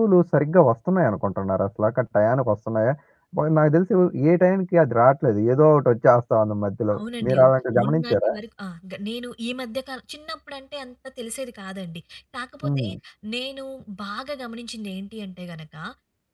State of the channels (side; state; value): both; identical; correlation 1.00